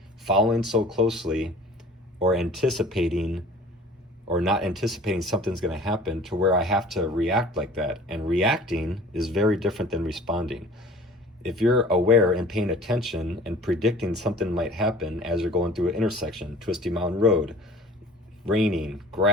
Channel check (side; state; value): both; normal; correlation 0.46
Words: following so closely or not anticipating something's going to happen to where I have to react like that. And reacting is very different than responding. If you're aware and paying attention and predicting something might happen as you're going through an intersection, twisty mountain road, raining,